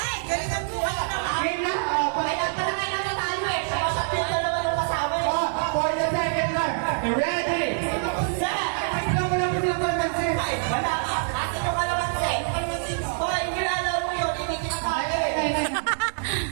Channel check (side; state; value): left; silent; digital silence